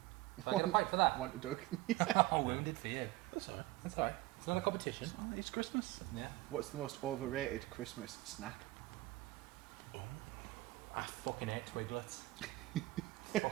So I get a point for that. One to Doug. Oh, wounded for you. That's alright. That's alright. It's not a competition. It's Christmas. Yeah. What's the most overrated Christmas snack? I fucking hate Twiglets.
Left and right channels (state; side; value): quieter; left; 18.7 dB